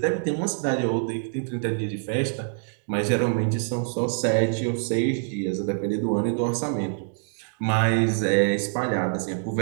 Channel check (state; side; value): silent; left; digital silence